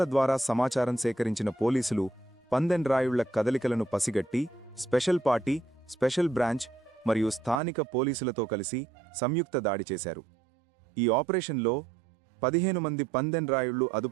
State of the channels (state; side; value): drops out; left; at 7.6 s